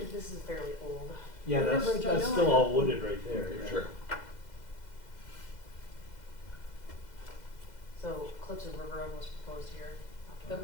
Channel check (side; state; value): right; late; 2.0 ms